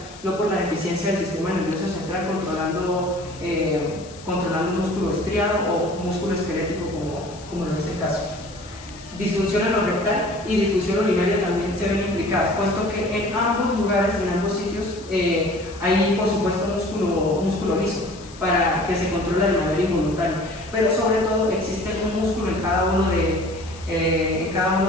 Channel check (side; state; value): left; noise; hiss, 20 dB below the sound